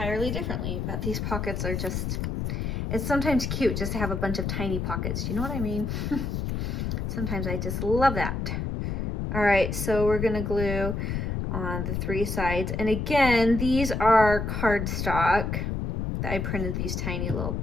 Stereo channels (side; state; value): left; noise; rumble, 2 dB below the sound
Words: differently. But these pockets are just, it's sometimes cute just to have a bunch of tiny pockets. Do you know what I mean? Sometimes I just love that. All right, so we're gonna glue on the 3 sides. And again, these are cardstock that I printed these tiny little